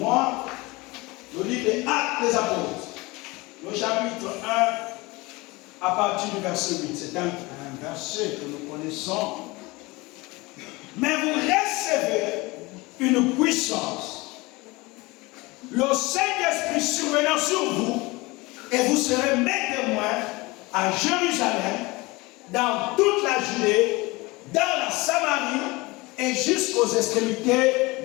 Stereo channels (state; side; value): quieter; right; 23.2 dB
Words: le livre des Actes des Apôtres. Le chapitre 1, à partir du verset 8. C'est un verset que nous connaissons. Mais vous recevez une puissance. Le Saint-Esprit survenant sur vous, et vous serez mes témoins à Jérusalem, dans toute la Judée, dans la Samarie et jusqu'aux extrémités